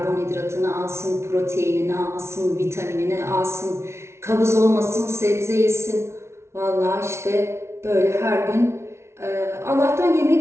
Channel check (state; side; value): late; left; 0.13 ms